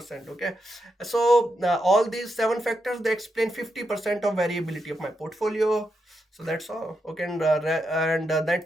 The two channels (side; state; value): both; normal; correlation 0.84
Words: Okay, so all these 7 factors, they explain 50% of variability of my portfolio. So that's all. Okay, and